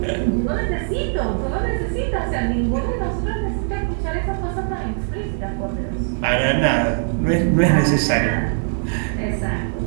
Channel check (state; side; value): silent; left; 65 dB below the other